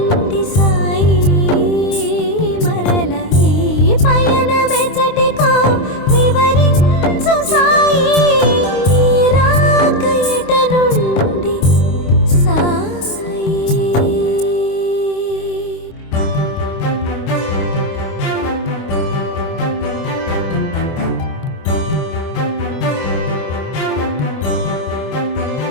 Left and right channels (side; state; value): right; late; 26 ms